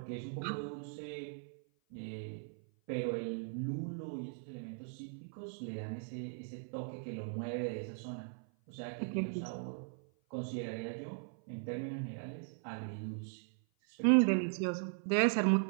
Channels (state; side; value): silent; left; 52 dB below the other